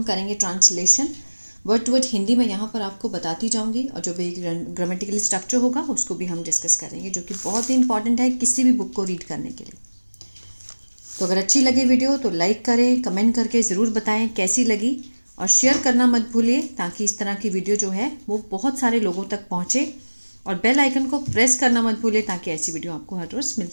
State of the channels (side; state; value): both; inverted; correlation -1.00